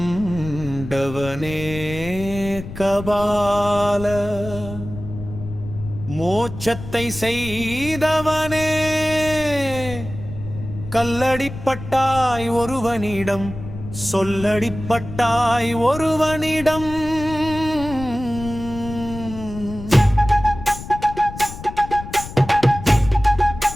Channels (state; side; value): noise; left; rumble, 11 dB below the sound